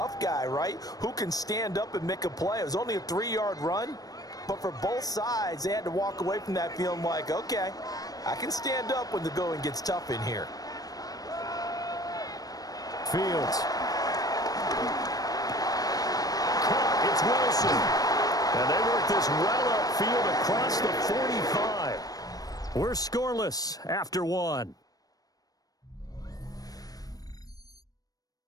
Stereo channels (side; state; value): right; late; 0.18 ms